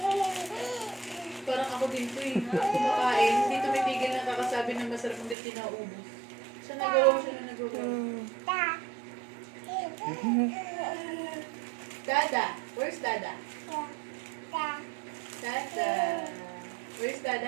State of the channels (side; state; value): left; drops out; at 5.4 s